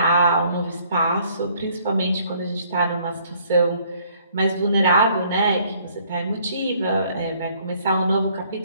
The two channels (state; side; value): inverted; both; correlation -0.62